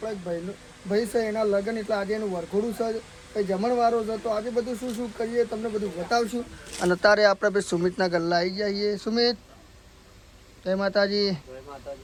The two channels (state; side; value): identical; both; correlation 1.00